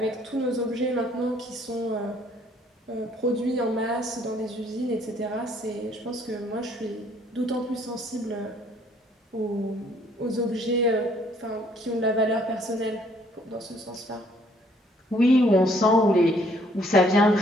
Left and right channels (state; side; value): normal; both; correlation 0.63